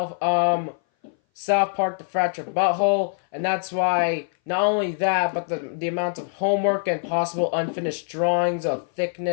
South Park The Fractured Butthole, and that's why not only that, but the amount of homework and possible unfinished drawings of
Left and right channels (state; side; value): silent; right; 58 dB below the other